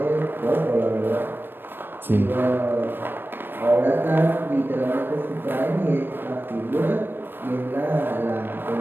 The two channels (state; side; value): late; left; 0.097 ms